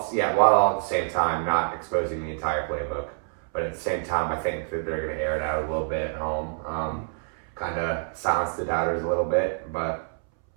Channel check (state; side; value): silent; left; 61 dB below the other